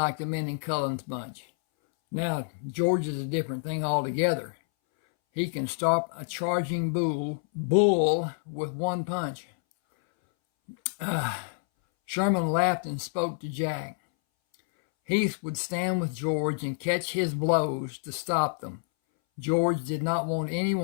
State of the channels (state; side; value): silent; right; 59 dB below the other